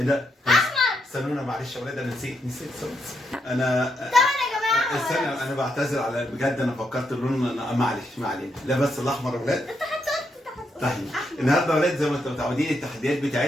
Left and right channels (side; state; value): both; normal; correlation 0.79